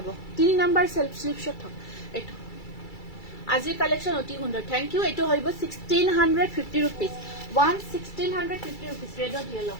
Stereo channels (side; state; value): right; late; 2.3 ms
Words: 3 নম্বৰ সেলফ স্লিপ শট হক এটো আজিৰ কালেকশন অতি সুন্দৰ থ্যাংক ইউ এটো হইব 1650 rupees 1650 rupees red or yellow